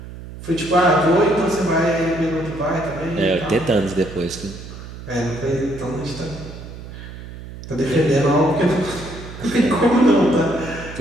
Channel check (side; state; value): right; noise; hum, 13 dB below the sound